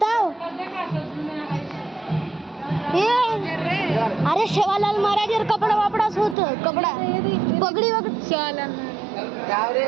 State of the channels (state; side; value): drops out; left; at 6.4 s